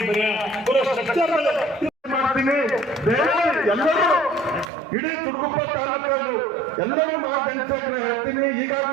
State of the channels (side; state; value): left; drops out; at 4.7 s